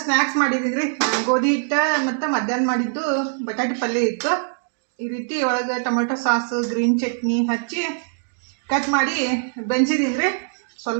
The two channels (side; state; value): left; silent; digital silence